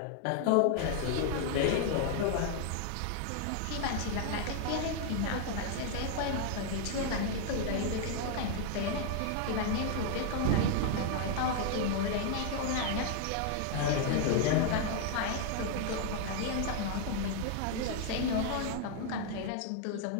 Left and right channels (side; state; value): both; different; correlation 0.00